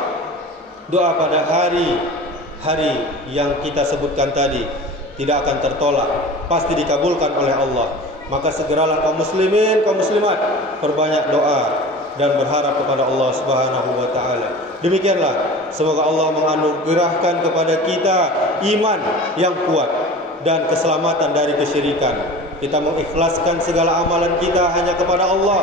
Doa pada hari yang kita sebutkan tadi tidak akan tertolak, pasti dikabulkan oleh Allah. Maka segeralah kaum muslimin, kaum muslimat, perbanyak doa dan berharap kepada Allah Subhanahu wa taala. Demikianlah, semoga Allah menganugerahkan kepada kita iman yang kuat dan keselamatan dari kesyirikan. Kita mengikhlaskan segala amalan kita hanya kepada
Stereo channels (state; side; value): normal; both; correlation 0.37